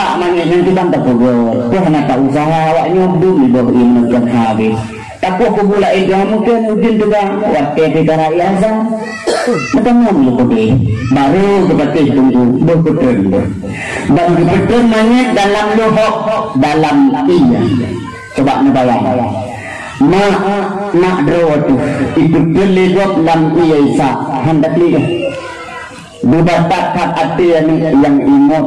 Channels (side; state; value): both; identical; correlation 1.00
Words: mana nanti bantah pegawai tu hanya tak usaha awaknya dulu bawa ia menekan habis takut pula itu mungkin ujung juga waktu kita rakyat macam mana boleh baru kepada tunggu betul dan betul monyet dalam lohok dalam iya. Coba ngebayang nak drawatu itu kelihut lam iya isa hendak lihat dibatakkan hati yang ingat